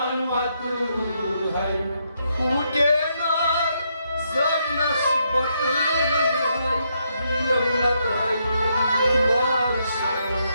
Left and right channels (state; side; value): inverted; both; correlation -0.77